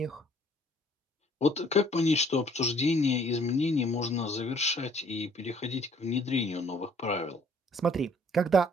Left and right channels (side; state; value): both; normal; correlation 0.60